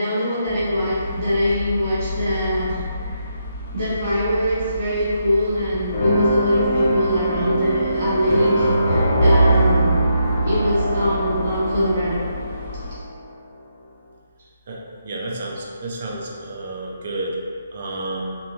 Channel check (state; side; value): inverted; both; correlation -0.80